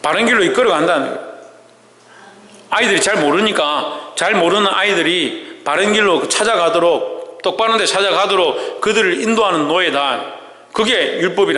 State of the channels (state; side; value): identical; both; correlation 1.00